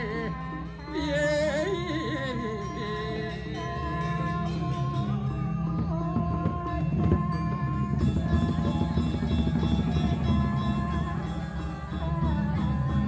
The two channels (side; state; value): both; identical; correlation 1.00